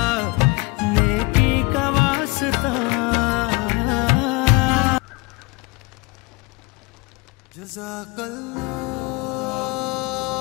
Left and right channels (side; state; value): right; quieter; 25.8 dB